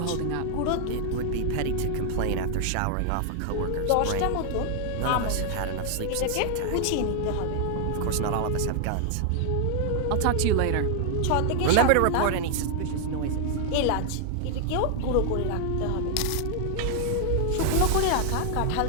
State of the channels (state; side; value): different; both; correlation 0.00